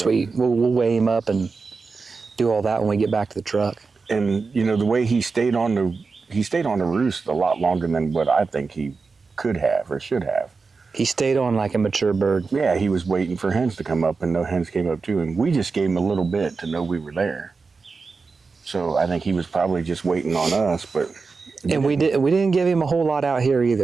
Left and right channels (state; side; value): quieter; left; 4.5 dB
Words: We'll weigh him up and do all that when we get back to the truck. And, the way he stayed on the roost a lot longer than what I think he could have or should have. He stayed on like a mature bird. Yeah, he was waiting for hens to come up, and no hens came up to him. We just gave him a little bit to know we were there. So I think he was probably just waiting on us, but... And we didn't give him a whole lot out here